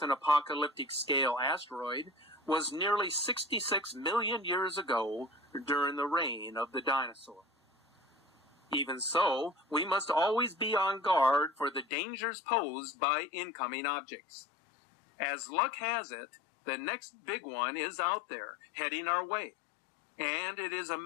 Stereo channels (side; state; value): right; drops out; at 11.9 s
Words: an apocalyptic-scale asteroid was nearly 66 million years ago during the reign of the dinosaurs. Even so, we must always be on guard for the dangers posed by incoming objects. As luck has it, the next big one is out there, heading our way, and it is a